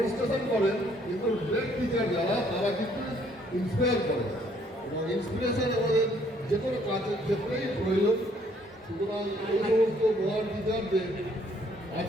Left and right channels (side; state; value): both; normal; correlation 0.65